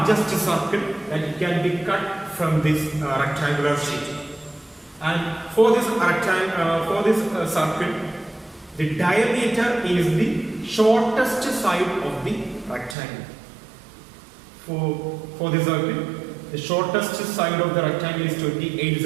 circle that can be cut from this rectangular sheet. And for this circle, the diameter is the shortest side of the rectangle. For the circle, the shortest side of the rectangle is 28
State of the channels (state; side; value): drops out; left; at 13.0 s